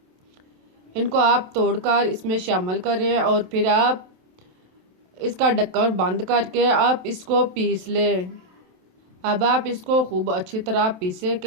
इनको आप तोड़कर इसमें शामिल करें और फिर आप इसका ढक्कन बंद करके आप इसको पीस लें। अब आप इसको खूब अच्छी तरह पीसें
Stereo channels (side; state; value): left; late; 27 ms